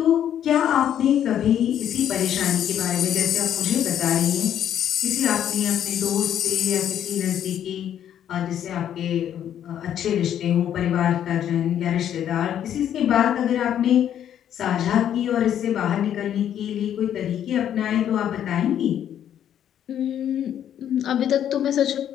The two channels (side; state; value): right; quieter; 10.1 dB